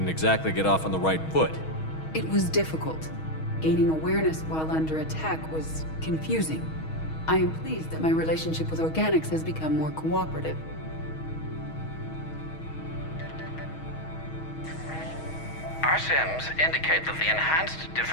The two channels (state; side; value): late; right; 6.3 ms